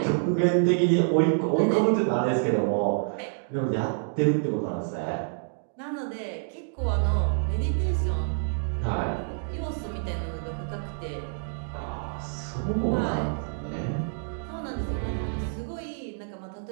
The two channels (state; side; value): silent; left; digital silence